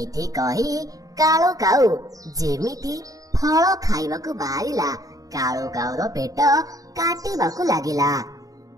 କହି କାଳୁ କାଉ ଯେମିତି ଫଳ ଖାଇବାକୁ ବାହାରିଲା, କାଳୁ କାଉର ପେଟ କାଟିବାକୁ ଲାଗିଲା।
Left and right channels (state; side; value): late; left; 0.17 ms